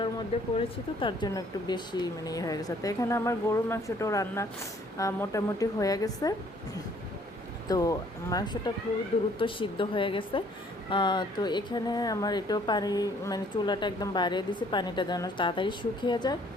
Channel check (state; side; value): normal; both; correlation 0.60